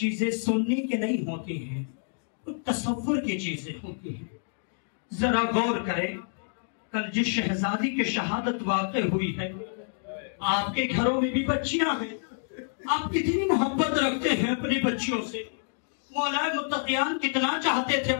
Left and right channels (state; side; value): silent; right; digital silence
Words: सुनने की नहीं होती हैं, कुछ तसव्वुर की चीजें होती हैं। जरा गौर करें, कल जिस शहजादी की शहादत वाक़ हुई है, आपके घरों में भी बच्चियां हैं, आप कितनी मोहब्बत रखते हैं अपनी बच्चियों से। मौलाए मुत्तकियान कितना चाहते थे